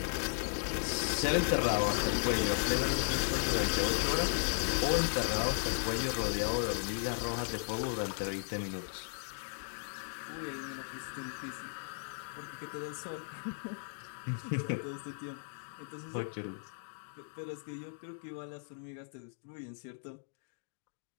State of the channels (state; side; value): silent; right; digital silence